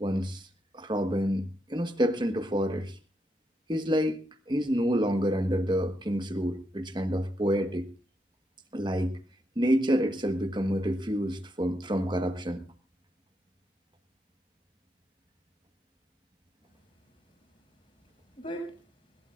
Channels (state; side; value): normal; both; correlation 0.81